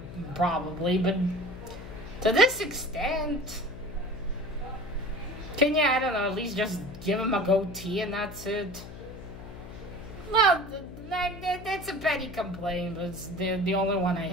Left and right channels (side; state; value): left; noise; hum, 13 dB below the sound